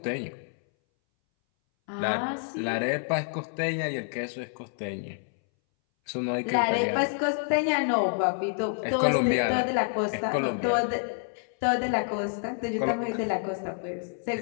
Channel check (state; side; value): silent; right; 59 dB below the other